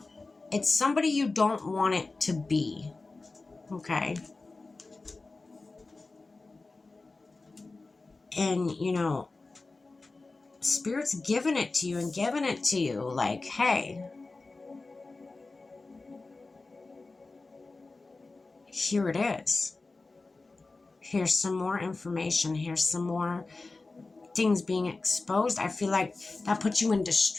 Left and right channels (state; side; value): quieter; right; 3.6 dB